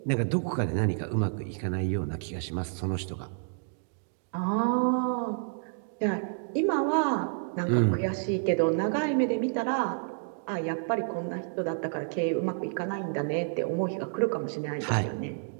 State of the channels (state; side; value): silent; left; digital silence